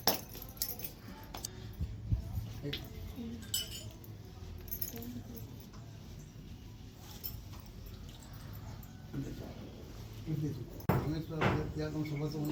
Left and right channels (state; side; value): identical; both; correlation 1.00